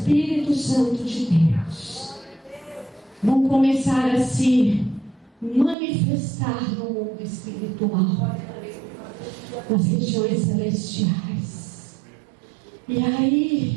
Santo de Deus, vão começar a se manifestar no mundo espiritual, nas regiões celestiais. E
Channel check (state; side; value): drops out; left; at 5.8 s